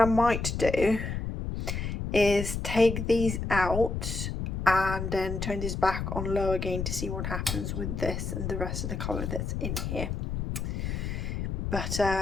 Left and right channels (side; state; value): left; noise; rumble, 3 dB below the sound